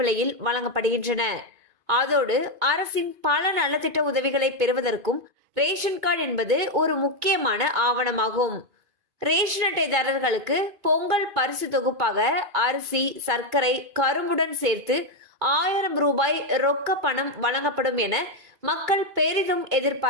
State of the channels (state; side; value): late; left; 2.5 ms